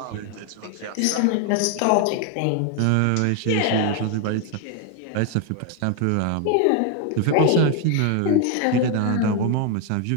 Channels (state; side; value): different; both; correlation 0.01